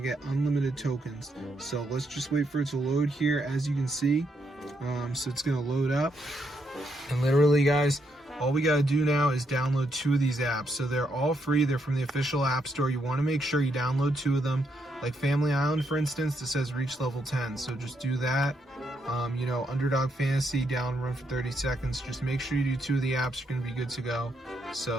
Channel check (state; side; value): normal; both; correlation 0.78